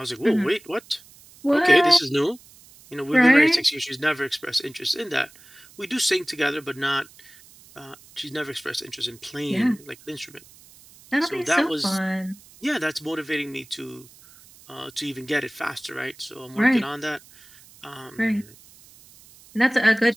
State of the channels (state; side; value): noise; right; hiss, 24 dB below the sound